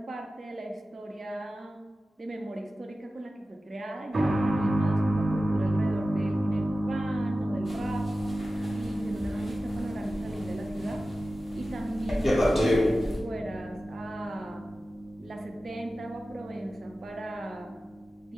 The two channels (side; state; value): both; normal; correlation 0.95